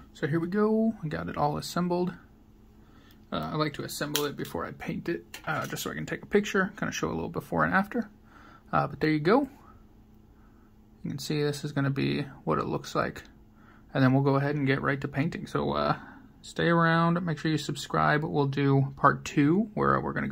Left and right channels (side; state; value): both; identical; correlation 1.00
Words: So here we go, I got it all assembled. I like to assemble it before I paint it, just so I can take a picture, kind of show a little before and after. But there you go. You can see this is going to be what it looks like. And then we'll go ahead and get right to painting. So stay around, make sure you subscribe. We'll do part 2 where we're going to